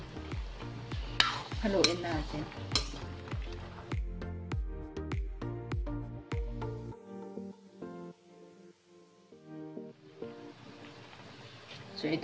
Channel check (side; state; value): both; identical; correlation 1.00